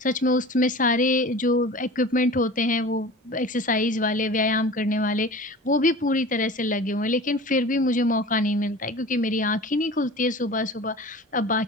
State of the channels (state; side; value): normal; both; correlation 0.38